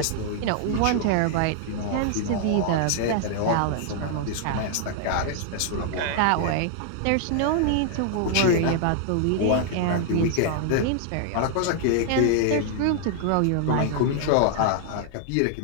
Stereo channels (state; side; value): different; both; correlation 0.00